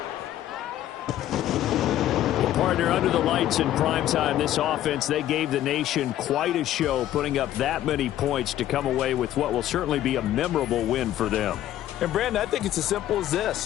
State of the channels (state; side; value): quieter; right; 12.7 dB